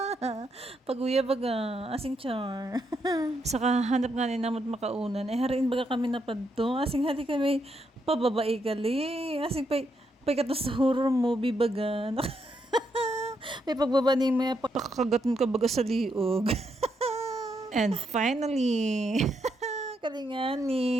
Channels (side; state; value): both; normal; correlation 0.79